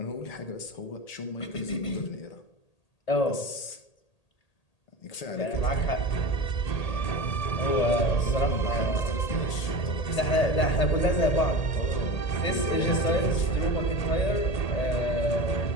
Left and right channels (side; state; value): right; late; 1.8 ms